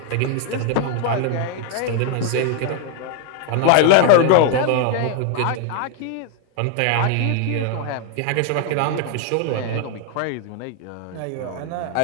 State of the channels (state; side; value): different; both; correlation 0.00